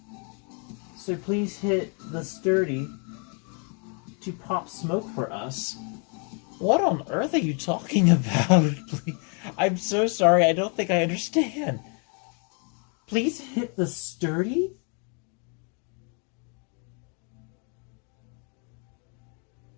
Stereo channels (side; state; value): right; quieter; 38.0 dB